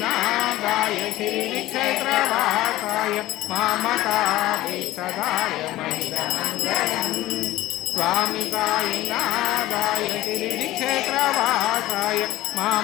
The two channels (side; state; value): right; quieter; 16.2 dB